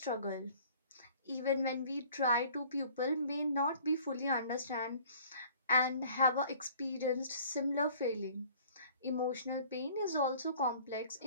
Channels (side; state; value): both; inverted; correlation -0.52